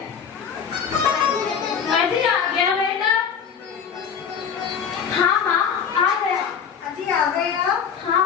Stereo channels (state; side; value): quieter; right; 7.2 dB